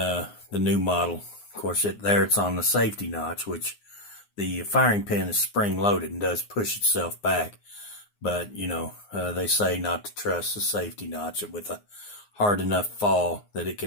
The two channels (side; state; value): right; late; 9.6 ms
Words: new model, of course, it's on the safety notch, which the firing pin is spring loaded and does push itself back. But, you know, they say not to trust the safety notch with a hard enough fall that it